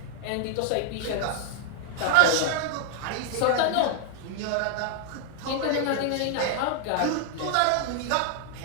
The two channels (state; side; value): different; both; correlation 0.00